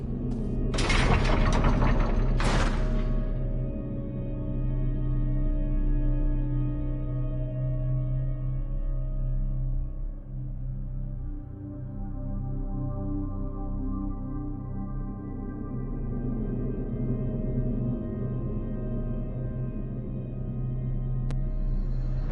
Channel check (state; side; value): identical; both; correlation 1.00